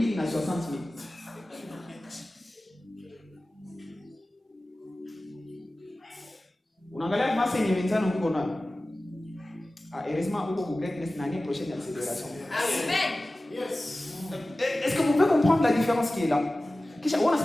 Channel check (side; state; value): both; normal; correlation 0.96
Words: et 60,000. Unaangalia masa yenye wenzano huko na. Heureusement huko ku greatness l'année prochaine accélération. Amen. Yes. Est-ce que vous pouvez comprendre la différence qui est là? Kisha on a